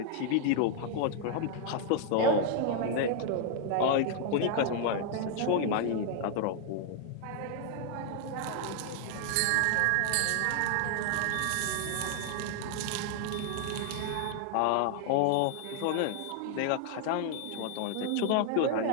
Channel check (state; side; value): different; both; correlation 0.00